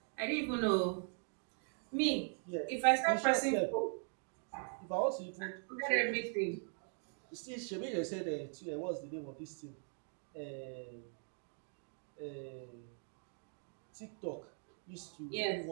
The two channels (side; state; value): left; silent; 51 dB below the other